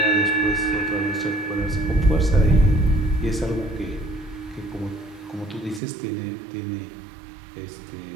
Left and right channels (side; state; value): left; drops out; at 5.8 s